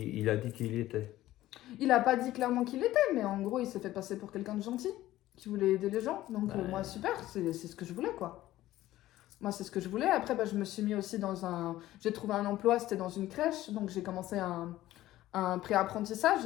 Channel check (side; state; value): right; quieter; 15.2 dB